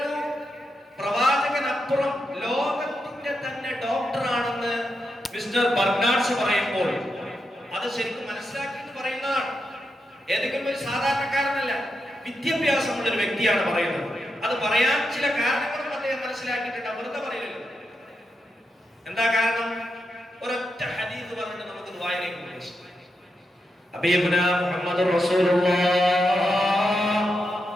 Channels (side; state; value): both; normal; correlation 0.85